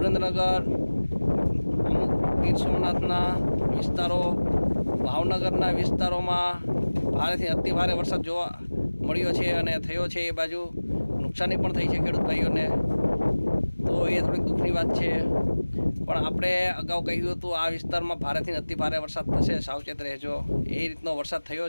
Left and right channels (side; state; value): both; inverted; correlation -1.00